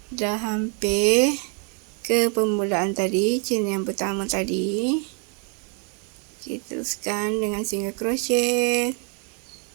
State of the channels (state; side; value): quieter; left; 37.5 dB